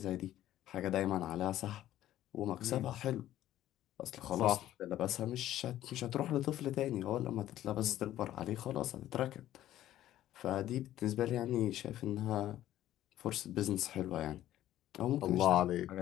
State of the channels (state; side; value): quieter; right; 13.2 dB